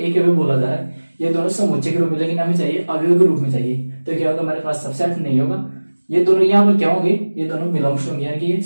अवयव बोला जा रहा है। ये दोनों समुच्चय के रूप में, लेकिन हमें चाहिए अवयव के रूप में चाहिए। तो क्या होगा, हमारे पास सबसेट नहीं होगा। ये दोनों यहाँ पर क्या होंगे, ये दोनों बिलोंग्स होंगे, यानी कि ये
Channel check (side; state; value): both; inverted; correlation -1.00